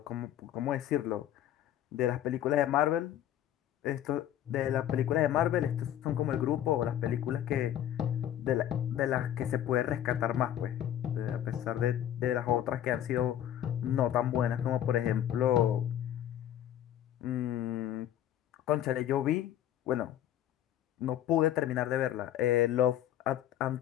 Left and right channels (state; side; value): quieter; right; 11.4 dB